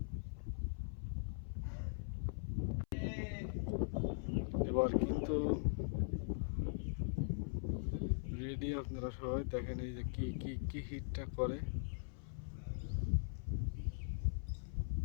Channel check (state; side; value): silent; right; 50 dB below the other